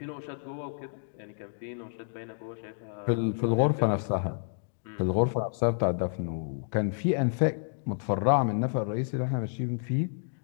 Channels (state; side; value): silent; right; digital silence